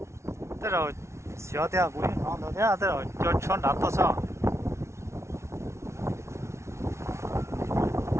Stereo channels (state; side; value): late; left; 0.13 ms